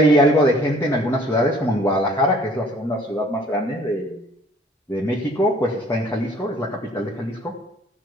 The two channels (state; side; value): normal; both; correlation 0.55